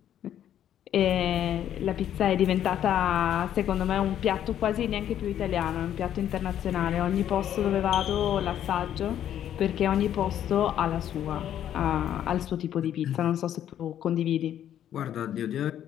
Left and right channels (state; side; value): quieter; right; 10.6 dB